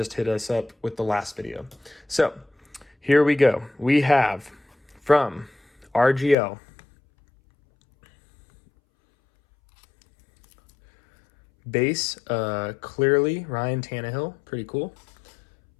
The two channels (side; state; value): right; drops out; at 6.4 s